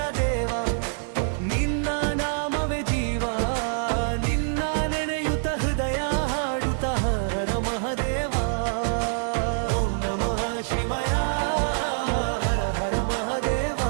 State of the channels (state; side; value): silent; left; digital silence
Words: ದೇವ ನಿನ್ನ ನಾಮವೇ ಜೀವ ನಿನ್ನ ನೆನೆಯುತ ಹೃದಯ ಹಾಡುತ್ತ ಹರ ಮಹದೇವ ಓಂ ನಮಃ ಶಿವಾಯ ಹರ ಹರ ಮಹದೇವ